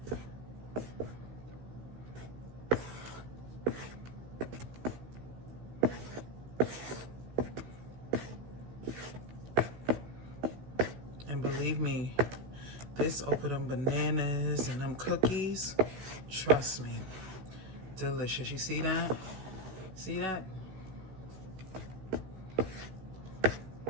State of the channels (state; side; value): late; left; 16 ms